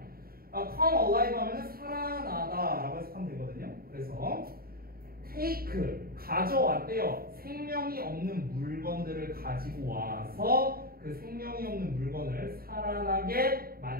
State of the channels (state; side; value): late; left; 0.43 ms